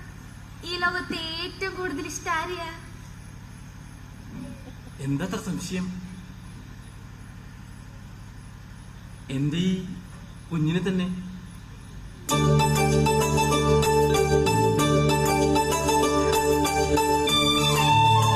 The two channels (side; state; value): both; identical; correlation 1.00